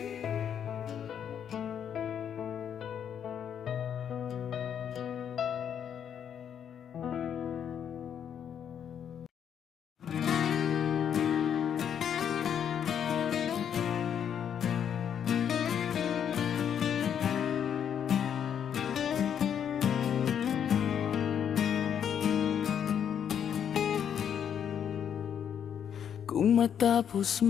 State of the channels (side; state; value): right; quieter; 8.6 dB